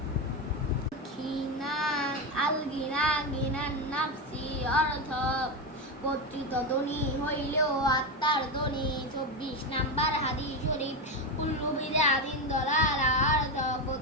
গিনান নাফসি অর্থ কর্তৃত্ব ধনী হইলেও আত্মার ধনী। 24 নাম্বার হাদিস শরীফ কুল্লু বিদআতিন দালালা অর্থ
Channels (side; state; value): both; normal; correlation 0.14